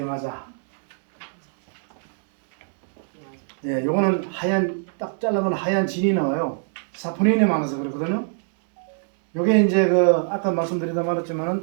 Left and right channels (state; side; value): silent; left; digital silence